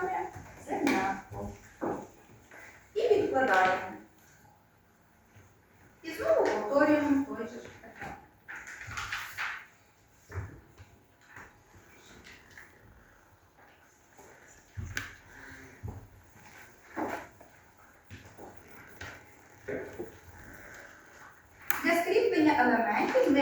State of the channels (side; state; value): both; identical; correlation 1.00